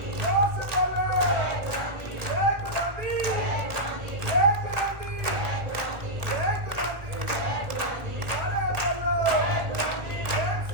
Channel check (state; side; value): late; left; 1.2 ms